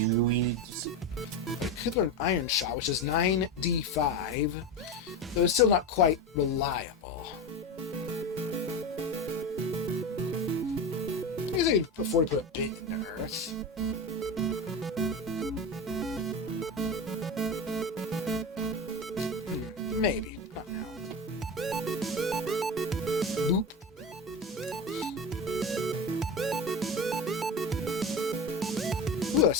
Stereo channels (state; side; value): normal; both; correlation 0.23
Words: could learn Iron Shot, which is 9d5, though it's still not quite reliable. I guess I could afford to put a bit into Earth. Maybe. Not now. Boop. Ooh, a